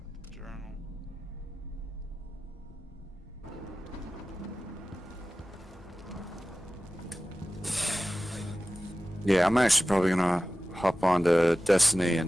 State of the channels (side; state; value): both; normal; correlation 0.96